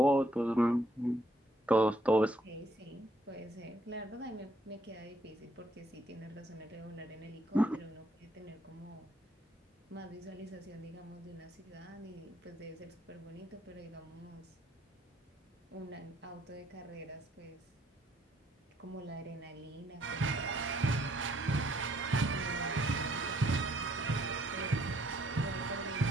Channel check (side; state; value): both; normal; correlation 0.69